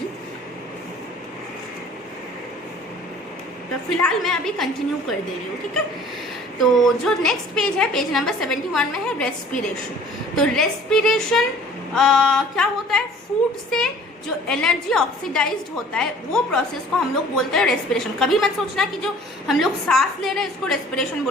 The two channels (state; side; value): normal; both; correlation 0.50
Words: तो फिलहाल मैं अभी कंटिन्यू कर दे रही हूँ, ठीक है। तो जो नेक्स्ट पेज है, पेज नंबर 71 में है रेस्पिरेशन। तो रेस्पिरेशन क्या होता है, फूड से जो एनर्जी ऑक्सीडाइज्ड होता है वो प्रोसेस को हम लोग बोलते हैं रेस्पिरेशन। कभी मत सोचना कि जो हम लोग सांस ले रहे हैं इसको रेस्पिरेशन